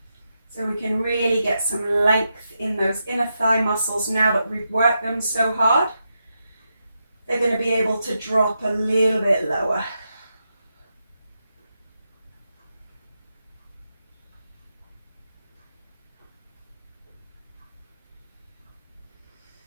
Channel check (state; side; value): inverted; both; correlation -0.85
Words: So we can really get some length in those inner thigh muscles now that we've worked them so hard. They're going to be able to drop a little bit lower.